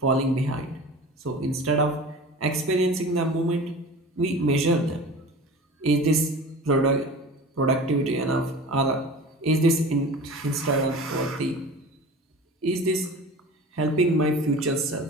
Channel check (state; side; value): normal; both; correlation 0.37